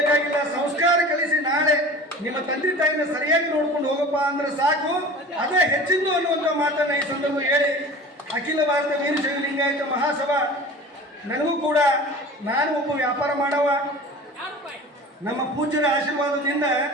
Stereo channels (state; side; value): normal; both; correlation 0.39